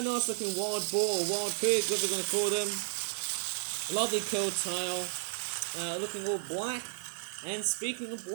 nice looking wild boar or wild pig, whatever we're going to call them. Lovely curled tail. Looking all black. And speaking of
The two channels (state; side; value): silent; left; 56 dB below the other